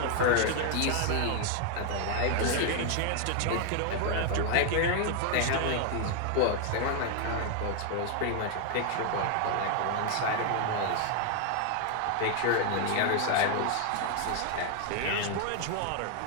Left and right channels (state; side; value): different; both; correlation 0.00